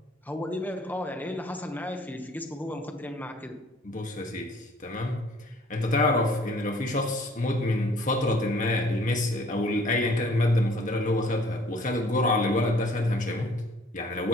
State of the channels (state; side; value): normal; both; correlation 0.56